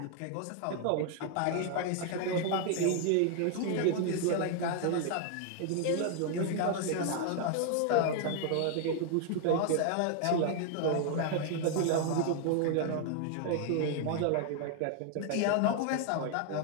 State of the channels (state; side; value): different; both; correlation 0.00